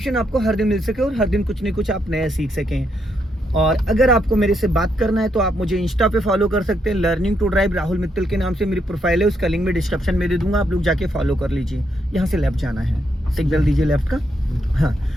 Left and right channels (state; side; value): normal; both; correlation 0.78